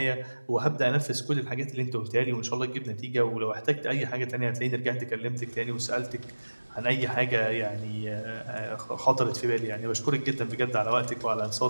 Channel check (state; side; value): inverted; both; correlation -1.00